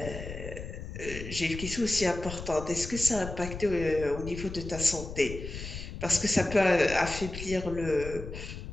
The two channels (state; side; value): noise; left; rumble, 9 dB below the sound